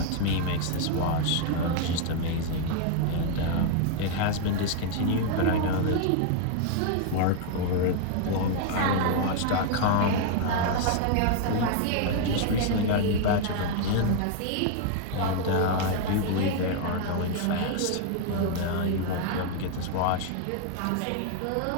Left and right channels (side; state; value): both; different; correlation 0.00